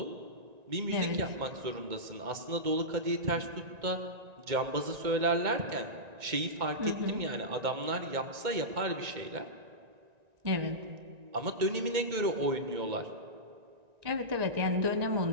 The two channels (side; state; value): left; late; 2.1 ms